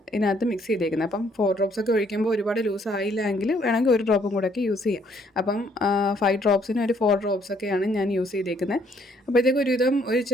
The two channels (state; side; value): normal; both; correlation 0.66